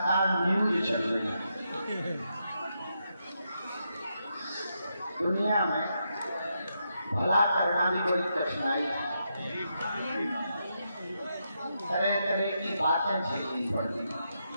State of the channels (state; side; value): inverted; both; correlation -0.82